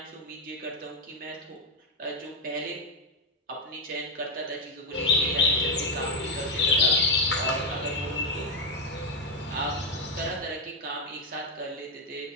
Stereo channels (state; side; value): normal; both; correlation 0.04